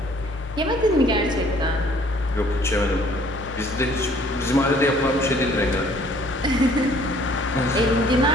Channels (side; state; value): both; normal; correlation 0.58